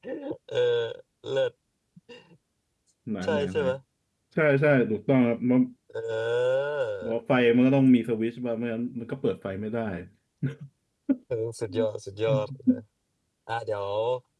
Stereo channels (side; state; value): both; identical; correlation 1.00